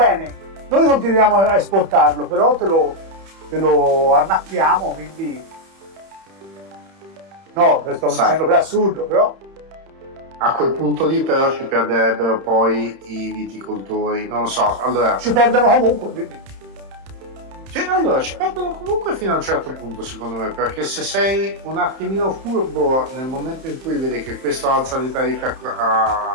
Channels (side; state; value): left; late; 31 ms